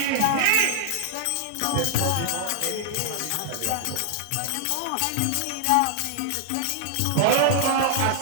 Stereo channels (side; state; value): both; different; correlation 0.00